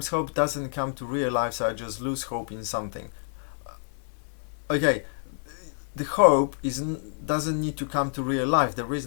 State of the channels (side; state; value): right; silent; digital silence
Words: hope doesn't come to real life, so I just lose hope in something. Okay, the hope doesn't need to come to real life. There is